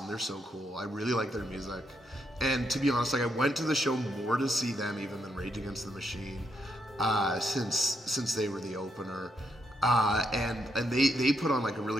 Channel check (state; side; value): normal; both; correlation 0.78